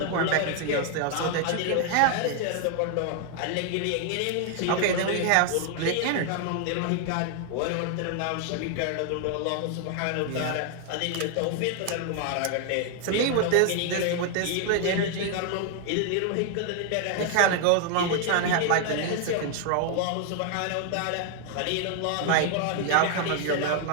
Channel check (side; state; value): both; different; correlation 0.00